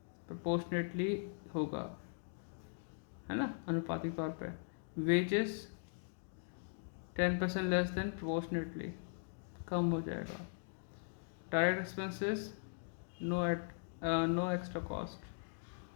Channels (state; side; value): silent; right; digital silence